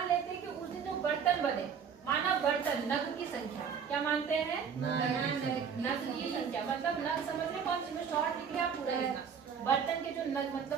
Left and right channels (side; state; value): left; quieter; 6.9 dB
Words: लेते हैं कि उस दिन जो बर्तन बने माना बर्तन नग की संख्या क्या मानते हैं नग की संख्या मतलब नग समझ रहे कौन सी में शॉर्ट लिख लिया पूरा लिखना बर्तन के जो नग